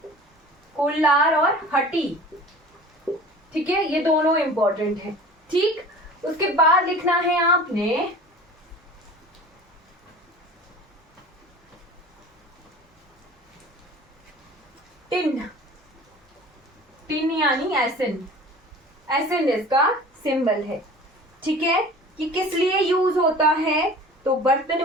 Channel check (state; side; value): normal; both; correlation 0.42